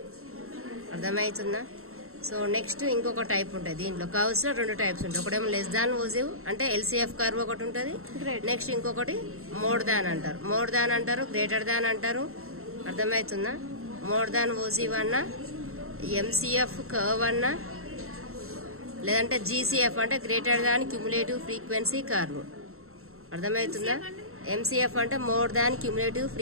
అర్థమవుతుందా? సో నెక్స్ట్ ఇంకొక టైప్ ఉంటుంది. దీంట్లో కర్వ్స్ లో 2 టైప్స్ ఉంటాయి. ఒకటేమో లెస్ దాన్ ఓజివ్ అంటే ఎల్సిఎఫ్ కర్వ్ ఒకటి ఉంటుంది. నెక్స్ట్ ఇంకొకటి మోర్ దాన్ అంటారు. మోర్ దాన్ అంటారు, గ్రేటర్ దాన్ అంటారు. అర్థమవుతుందా? మోర్ దాన్ ఓజివ్ అన్నా ఎంసిఎఫ్ కర్వ్ అన్నా లేదంటే జీసీఎఫ్ అంటే greater than cumulative frequency curve. అర్థమవుతుందా? ఎంసిఎఫ్ అంటే more than cumulative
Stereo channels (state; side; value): late; left; 0.62 ms